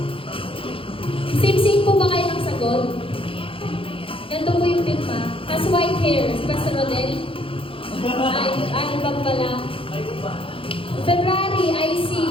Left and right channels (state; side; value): late; right; 0.26 ms